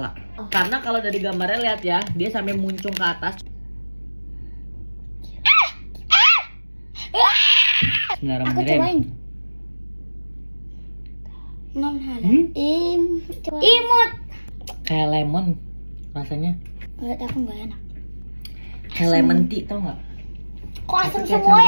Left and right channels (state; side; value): inverted; both; correlation -1.00